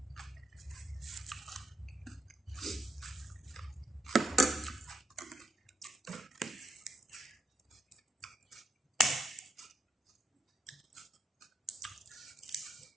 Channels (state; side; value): normal; both; correlation 0.79